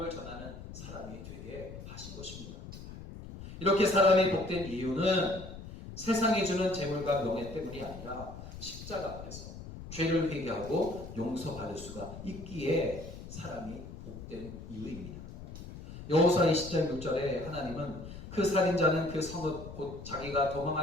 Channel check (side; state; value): left; noise; rumble, 12 dB below the sound